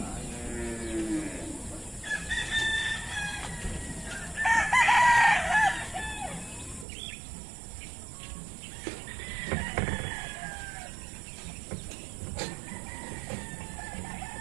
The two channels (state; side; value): drops out; left; at 6.9 s